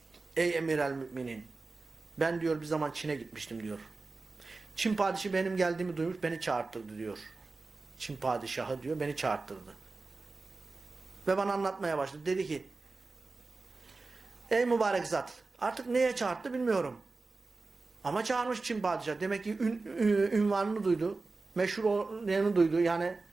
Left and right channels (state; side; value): quieter; left; 3.7 dB